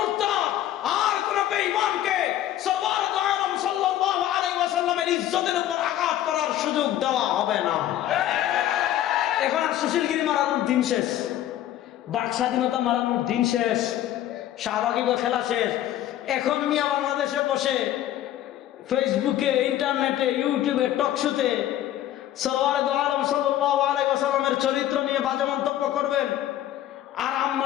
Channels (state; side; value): quieter; right; 12.6 dB